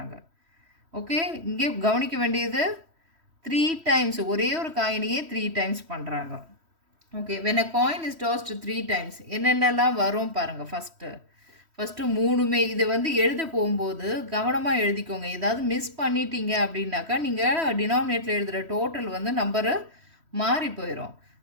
ஓகே, இங்கே கவனிக்க வேண்டியது 3 டைம்ஸ், ஒரே ஒரு காயினையே 3 டைம்ஸ் பண்ணுறாங்க. Okay, when a coin is tossed 3 times என்னென்னலாம் வரும் பாருங்கள். ஃபஸ்ட்டு 3மே இது வந்து எழுத போகும்போது கவனமாக எழுதிக்கோங்க. ஏதாவது மிஸ் பண்ணிட்டீங்க அப்படின்னாக்கா நீங்கள் டினாமினேட்டில் எழுதுகிற டோட்டல் வந்து நம்பரு மாறி போயிடும்.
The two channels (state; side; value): late; left; 3.1 ms